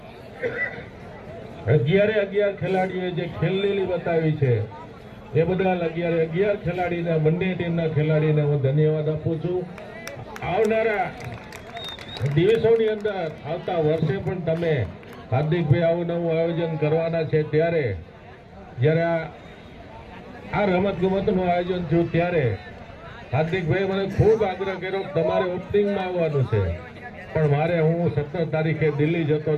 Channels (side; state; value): both; identical; correlation 1.00